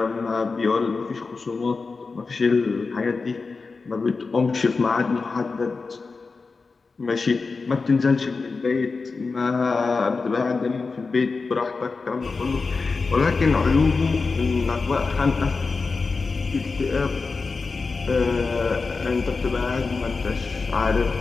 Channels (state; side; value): quieter; right; 4.3 dB